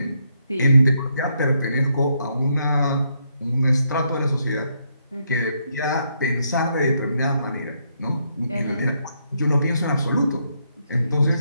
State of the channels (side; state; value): both; inverted; correlation -0.77